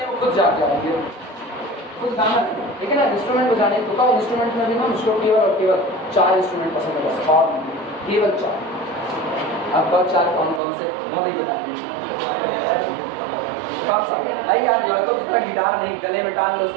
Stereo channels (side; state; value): left; drops out; at 10.6 s